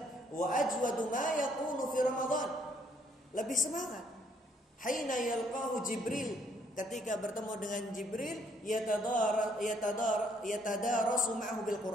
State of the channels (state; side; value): normal; both; correlation 0.67